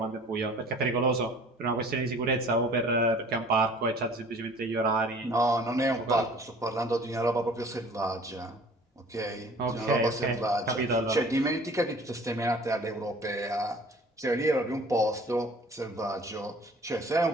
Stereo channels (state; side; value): normal; both; correlation 0.49